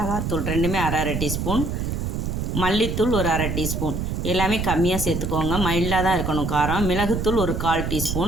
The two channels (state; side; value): noise; right; rumble, 2 dB below the sound